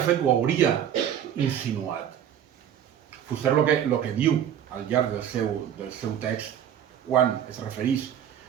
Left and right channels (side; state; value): left; quieter; 9.7 dB